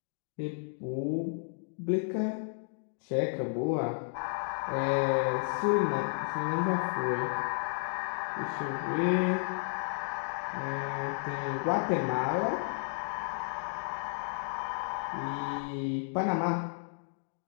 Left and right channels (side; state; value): right; silent; 56 dB below the other